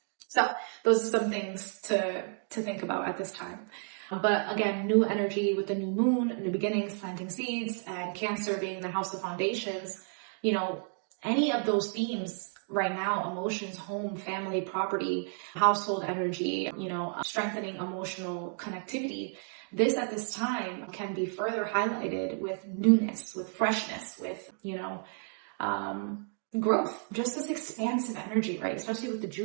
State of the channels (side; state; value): left; silent; 57 dB below the other